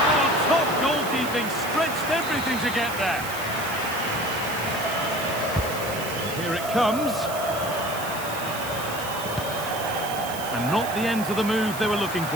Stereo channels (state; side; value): noise; right; hiss, 11 dB below the sound